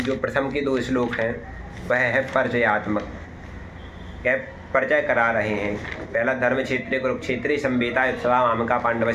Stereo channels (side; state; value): both; identical; correlation 1.00